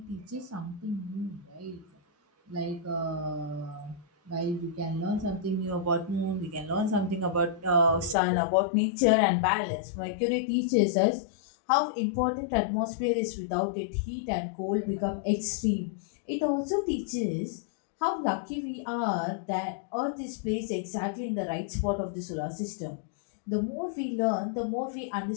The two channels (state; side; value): drops out; right; at 8.2 s